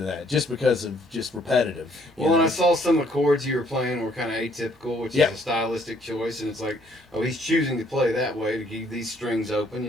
that, just because of just repetitive. Well, and I saw some of the chords you were playing were kind of atypical, which is a stylistic choice, and it's like, oh, he's choosing to play that way to keep these strings open.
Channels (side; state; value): both; normal; correlation 0.65